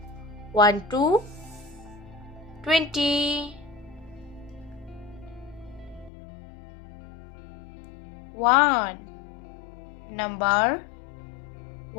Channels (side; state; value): right; drops out; at 6.1 s